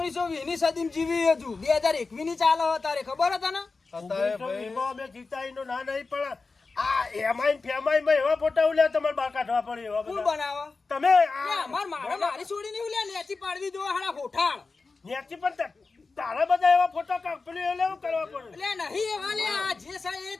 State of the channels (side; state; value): right; quieter; 4.1 dB